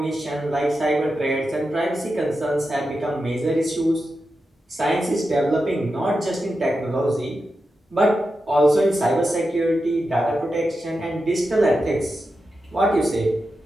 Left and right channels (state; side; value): normal; both; correlation 0.89